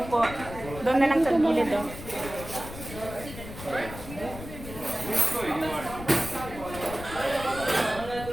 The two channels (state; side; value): noise; left; rumble, 12 dB below the sound